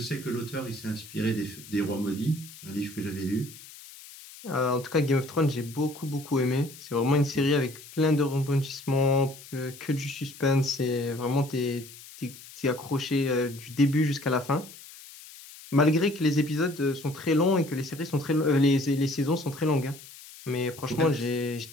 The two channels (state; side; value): noise; left; hiss, 18 dB below the sound